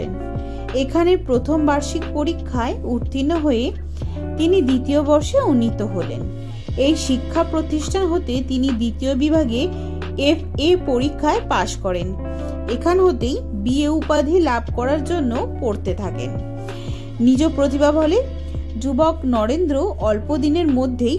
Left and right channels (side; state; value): both; identical; correlation 1.00